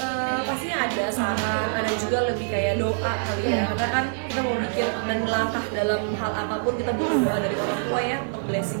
Pastinya ada saran, ada juga lebih kayak doa kali ya, karena kan kita mau bikin dan melangkah dalam hal apapun kita butuh doa dari orang tua ya, untuk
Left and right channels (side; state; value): left; silent; 62 dB below the other